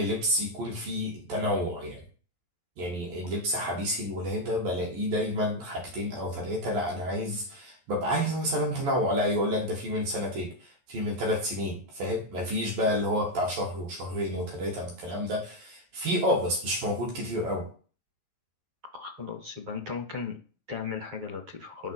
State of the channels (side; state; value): left; late; 11 ms